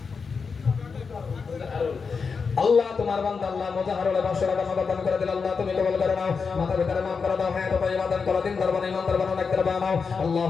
আল্লাহ তোমার বান্দা আল্লাহ মুজাহারুল 500 টাকা নগদ দান করে দিল। আল্লাহ তুমি কবুল করে নাও। মাথা ভিতরে মাফ করে দাও, হায়াত তাইয়্যিবা দান করো, দিন দরবার ইমান দরবার অনেক দরবার নাও।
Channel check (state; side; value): quieter; right; 5.3 dB